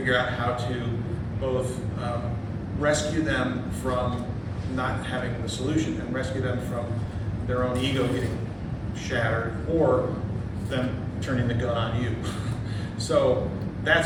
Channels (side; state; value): both; identical; correlation 1.00